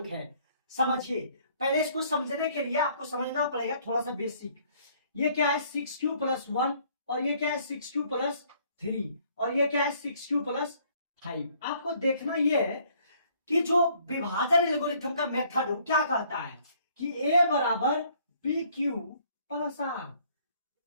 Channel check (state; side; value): inverted; both; correlation -0.62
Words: है। समझिए, पहले इसको समझने के लिए आपको समझना पड़ेगा थोड़ा सा बेसिक। ये क्या है 6q + 1 और ये क्या है 6q + 3 और ये क्या है 6q + 5। आपको देखना ये है कि जो विभाजन एल्गोरिथम का मेथड हो क्या कहता है कि a बराबर bq + r।